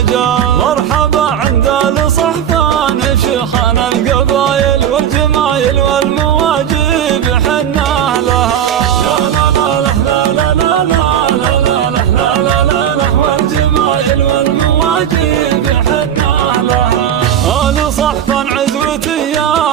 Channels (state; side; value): quieter; left; 9.6 dB